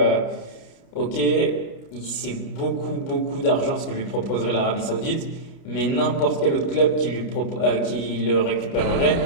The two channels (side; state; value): right; late; 29 ms